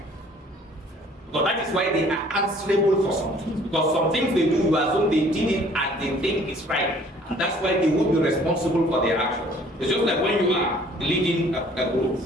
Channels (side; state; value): both; normal; correlation 0.55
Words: Because that is why they are answerable for some things. Because some things they do, you assume they did it and they think it's right. And that's why they will be responsible for their actions. It's just like when you are leading a